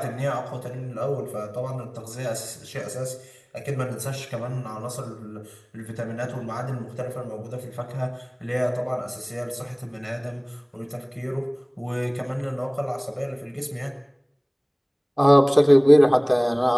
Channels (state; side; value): identical; both; correlation 1.00